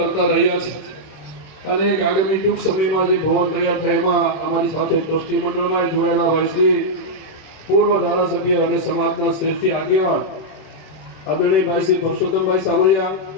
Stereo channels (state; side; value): late; right; 26 ms